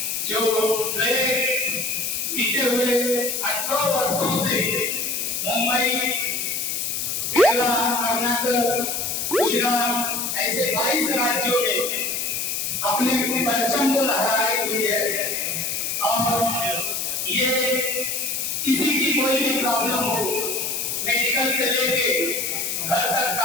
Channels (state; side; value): noise; left; hiss, 1 dB below the sound